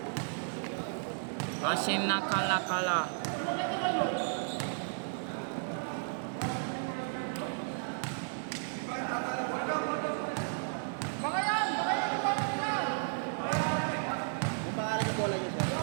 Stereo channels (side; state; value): left; silent; digital silence